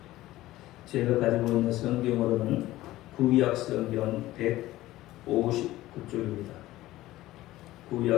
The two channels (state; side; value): quieter; right; 16.3 dB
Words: 제가 가지고 있는 성경으로는 구약 성경 159쪽입니다.